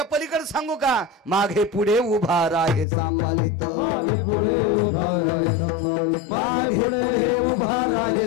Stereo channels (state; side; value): drops out; right; at 2.9 s